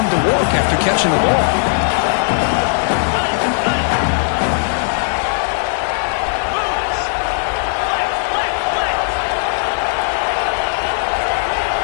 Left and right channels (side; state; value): right; silent; digital silence